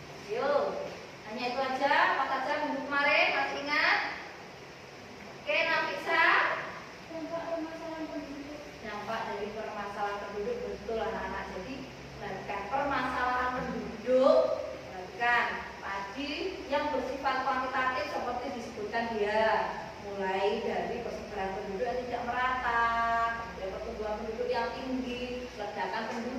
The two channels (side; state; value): both; identical; correlation 1.00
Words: Yuk, hanya itu aja. Apa saja minggu kemarin? Masih ingat? Oke, Nafisa. Dampak permasalahan penduduk. Dampak dari permasalahan penduduk, betul anak-anak. Jadi perhatikan permasalahan penduduk. Perhatikan tadi yang bersifat kuantitatif seperti disebutkan dia, mulai dari persebaran penduduk yang tidak merata, kemudian pertumbuhan penduduk yang tinggi, ledakan